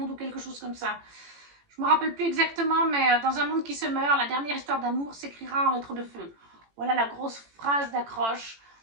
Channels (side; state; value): left; late; 18 ms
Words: ou quelque chose comme ça. Je ne me rappelle plus exactement, mais dans un monde qui se meurt, la dernière histoire d'amour s'écrira en lettres de feu. Voilà la grosse phrase d'accroche.